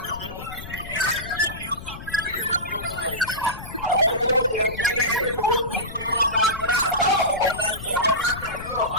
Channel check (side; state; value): left; noise; rumble, 12 dB below the sound